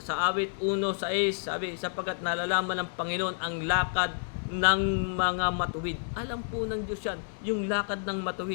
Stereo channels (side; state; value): right; silent; digital silence